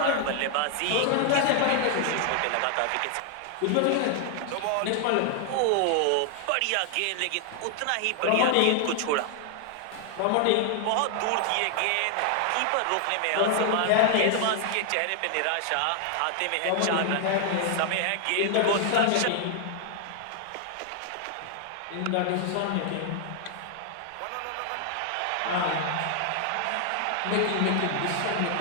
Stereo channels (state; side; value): different; both; correlation 0.00